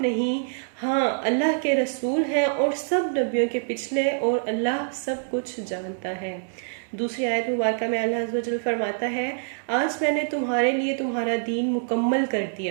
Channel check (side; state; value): left; silent; digital silence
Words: نہیں، ہاں اللہ کے رسول ہیں اور سب نبیوں کے پچھلے، اور اللہ سب کچھ جانتا ہے۔ دوسری آیت مبارکہ میں اللہ عز و جل فرماتا ہے، آج میں نے تمہارے لیے تمہارا دین مکمل کر